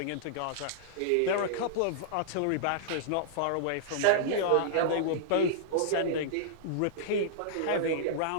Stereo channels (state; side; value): different; both; correlation -0.02